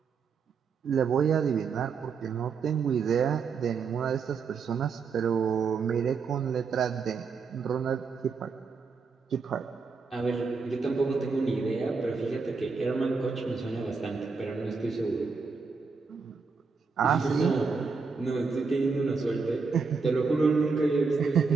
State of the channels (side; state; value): left; quieter; 5.0 dB